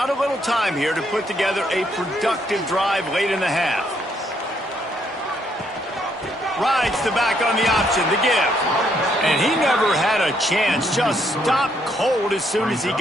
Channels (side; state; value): both; normal; correlation 0.72